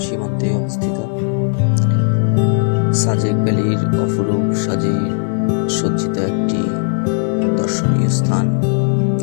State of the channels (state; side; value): silent; right; 63 dB below the other